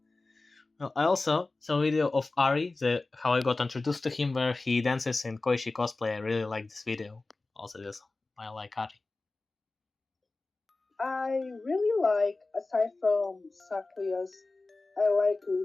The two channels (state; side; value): quieter; right; 3.4 dB